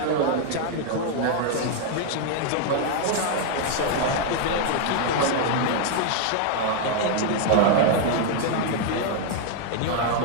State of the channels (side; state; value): both; different; correlation 0.00